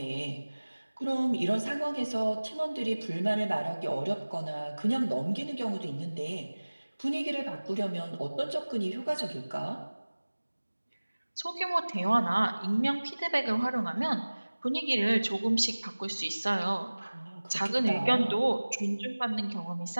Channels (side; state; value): both; inverted; correlation -1.00